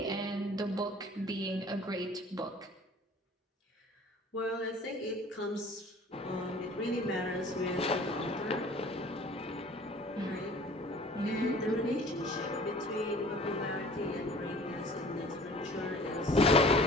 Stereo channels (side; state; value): both; normal; correlation 0.48